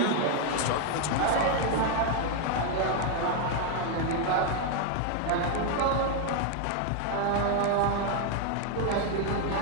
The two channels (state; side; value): different; both; correlation 0.00